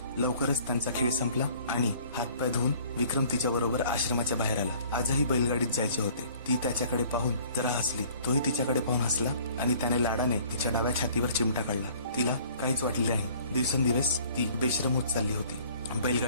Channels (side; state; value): both; inverted; correlation -0.53